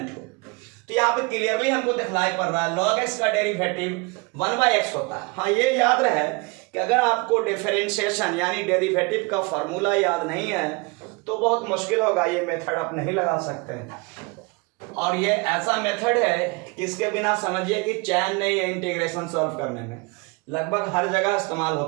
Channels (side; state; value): left; quieter; 27.8 dB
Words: हो। तो यहाँ पे क्लियरली हमको दिखलाई पड़ रहा है log x का डेरिवेटिव 1/x होता है। हाँ, ये याद रहे कि अगर आपको डिफरेंशिएशन यानी डेरिवेटिव का फॉर्मूला याद नहीं है तो बहुत मुश्किल होगा, ये मेथड आप नहीं लगा सकते हैं। और ये ऐसा मेथड है कि इसके बिना समझिए कि चैन नहीं है इंटीग्रेशन सॉल्व करने में, लगभग हर जगह इस्तेमाल